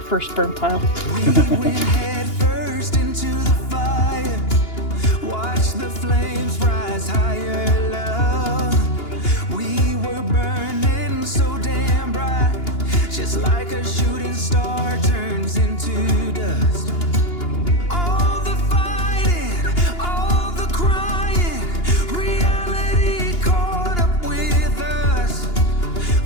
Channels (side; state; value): right; late; 2.9 ms